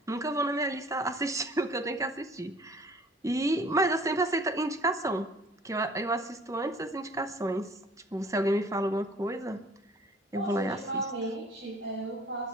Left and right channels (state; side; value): normal; both; correlation 0.52